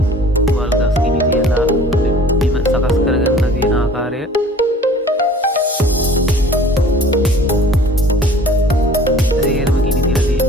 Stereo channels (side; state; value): both; normal; correlation 0.49